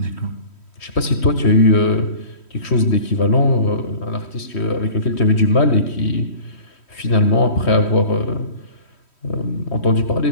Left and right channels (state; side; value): late; right; 3.1 ms